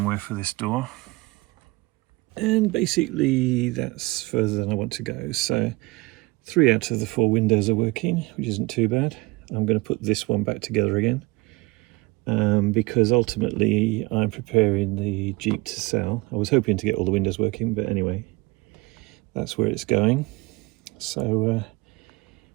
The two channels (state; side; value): quieter; left; 23.6 dB